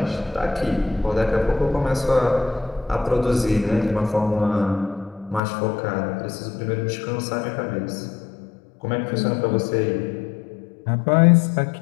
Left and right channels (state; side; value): drops out; right; at 5.4 s